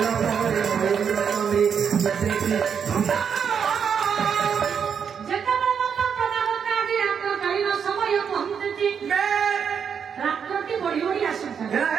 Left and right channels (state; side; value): quieter; left; 7.1 dB